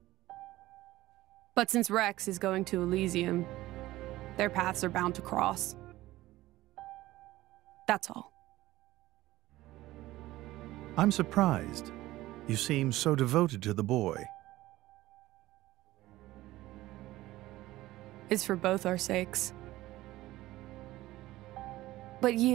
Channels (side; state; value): left; quieter; 16.7 dB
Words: But since Rex is going to Elysium, their paths are bound to cross. That's all. I'm surprised. You seem so devoted to the boy. It's for both our sakes. But